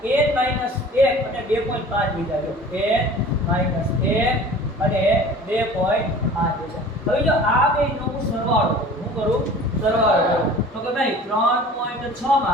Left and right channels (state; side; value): normal; both; correlation 0.43